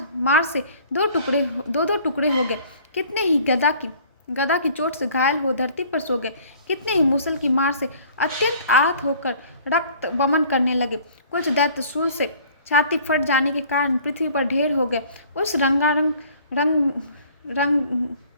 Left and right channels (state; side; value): inverted; both; correlation -0.52